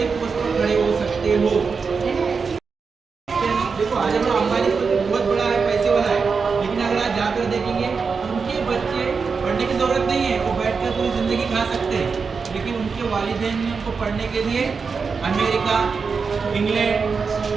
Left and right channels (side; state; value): left; quieter; 5.2 dB